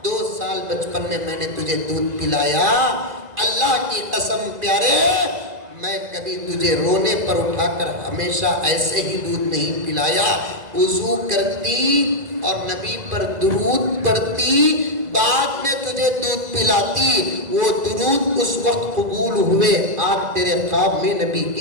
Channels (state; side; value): late; left; 2.0 ms